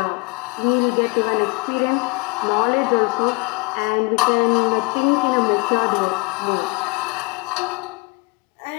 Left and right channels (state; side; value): quieter; right; 29.3 dB